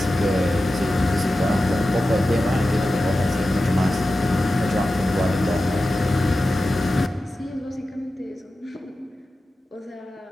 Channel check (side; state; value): both; normal; correlation 0.93